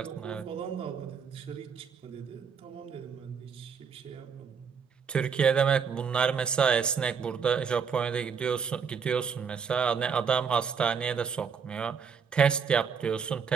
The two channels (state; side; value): quieter; left; 6.3 dB